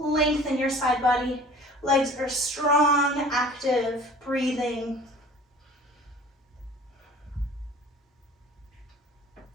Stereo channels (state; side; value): normal; both; correlation 0.46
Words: in your side body. Legs are strong, active, breathing.